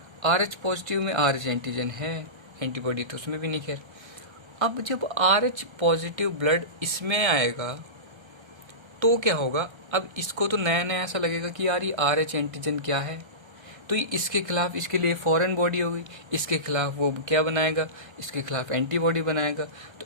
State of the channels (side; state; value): left; late; 1.3 ms